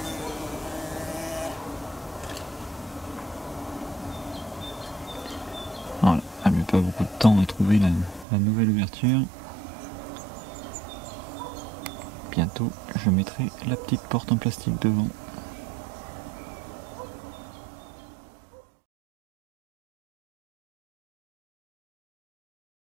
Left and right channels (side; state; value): left; drops out; at 8.2 s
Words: Voilà, elle met pas beaucoup de temps à trouver la nouvelle ouverture. Bientôt, je mettrai la petite porte en plastique devant.